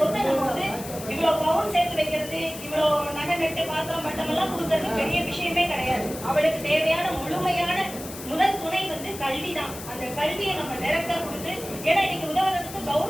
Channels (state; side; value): noise; left; hiss, 12 dB below the sound